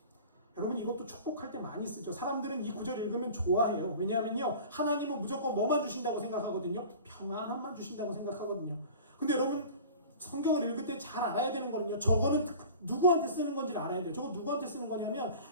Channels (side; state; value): both; inverted; correlation -0.40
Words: 여러분 이것도 축복할 때 많이 쓰죠. 사람들은 이 구절 읽으면 좋아해요. 왜냐하면요 하나님은 무조건 뭐만 주신다고 생각하거든요. 평안함만 주신다고 생각하거든요. 근데 여러분 성경을 읽을 때 잘 알아야 되는 거는요. 저거는 누구한테 쓰는 건지를 알아야 돼요. 저거 누구한테 쓰는 거냐면